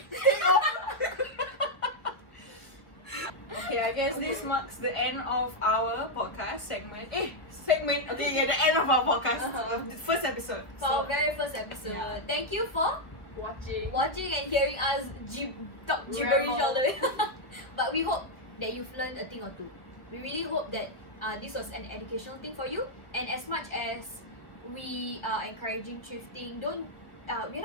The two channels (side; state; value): right; late; 1.1 ms